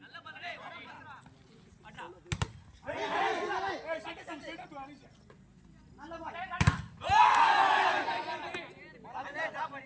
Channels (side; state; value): both; identical; correlation 1.00